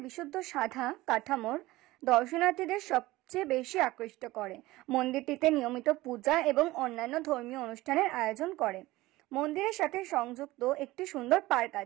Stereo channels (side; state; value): left; quieter; 18.7 dB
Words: বিশুদ্ধ সাদা কাঠামোর দর্শনার্থীদের সবচেয়ে বেশি আকৃষ্ট করে। মন্দিরটিতে নিয়মিত পূজা এবং অন্যান্য ধর্মীয় অনুষ্ঠানের আয়োজন করে। মন্দিরের সাথে সংযুক্ত একটি সুন্দর পার্ক